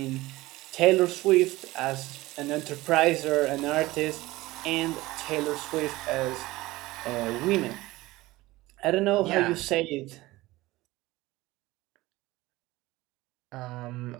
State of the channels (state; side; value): quieter; left; 18.9 dB